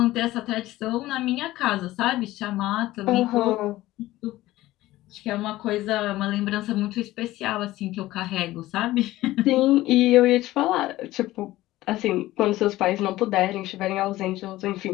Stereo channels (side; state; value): right; quieter; 16.6 dB